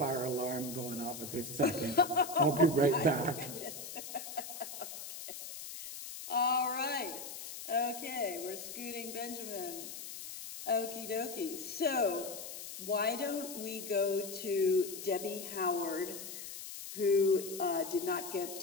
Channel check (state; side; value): noise; left; hiss, 10 dB below the sound